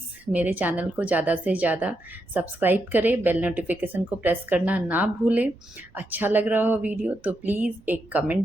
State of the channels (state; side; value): noise; right; rumble, 29 dB below the sound